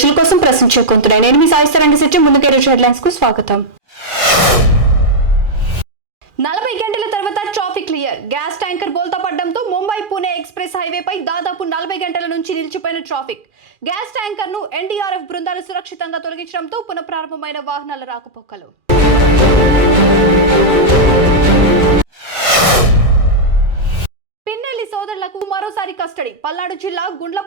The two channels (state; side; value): late; left; 2.4 ms